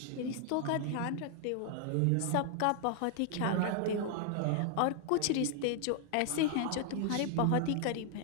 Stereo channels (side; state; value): both; different; correlation 0.00